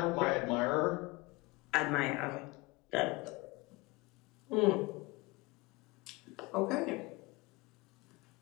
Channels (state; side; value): quieter; right; 23.4 dB